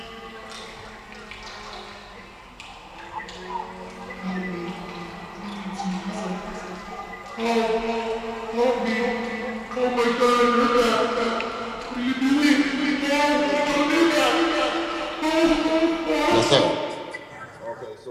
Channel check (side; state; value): both; identical; correlation 1.00